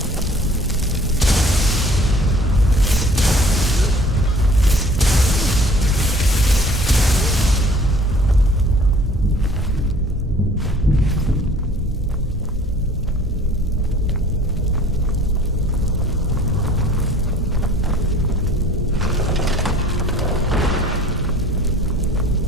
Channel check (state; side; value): normal; both; correlation 0.52